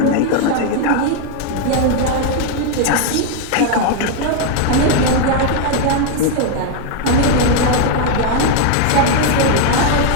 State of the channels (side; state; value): both; different; correlation 0.01